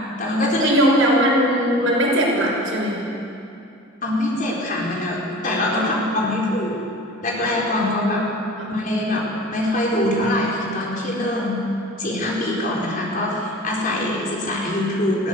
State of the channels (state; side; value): normal; both; correlation 0.38